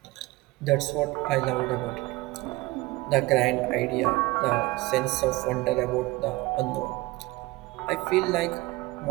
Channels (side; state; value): left; quieter; 20.9 dB